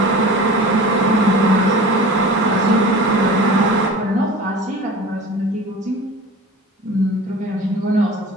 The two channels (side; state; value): both; normal; correlation 0.37